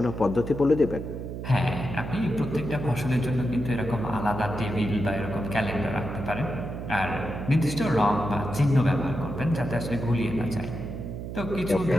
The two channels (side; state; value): right; noise; hum, 7 dB below the sound